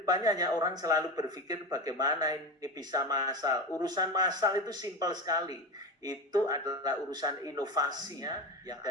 hanya orang selalu berpikir bagaimana ini bisa massal. Urusan massal itu simpel sekali. Itu adalah urusan inovasi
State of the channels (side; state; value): both; normal; correlation 0.22